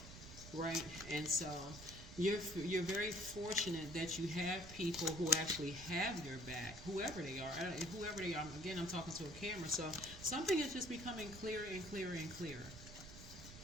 right? And so you're very fortunate that you have people who actually have your back, whoever they are. Whoever they are. Again, I'm talking to a camera, so something is just becoming clearer and clearer and clearer.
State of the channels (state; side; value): noise; right; rumble, 13 dB below the sound